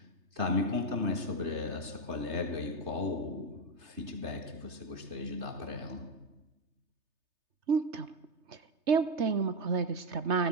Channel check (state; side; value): late; left; 3.3 ms